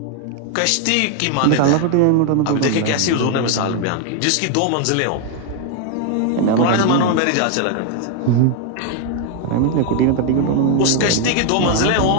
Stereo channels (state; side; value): different; both; correlation 0.01